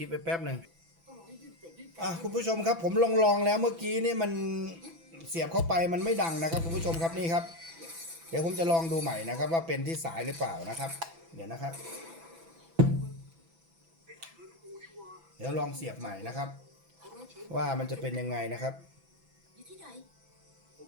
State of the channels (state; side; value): late; left; 6.0 ms